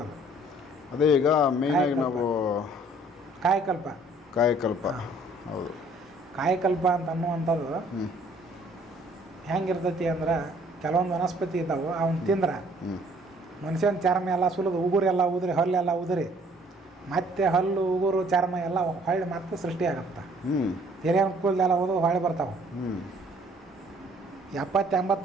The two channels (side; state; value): both; normal; correlation 0.59